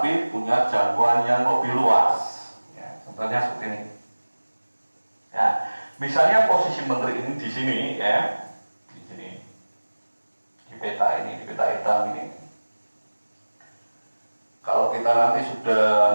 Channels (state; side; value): inverted; both; correlation -1.00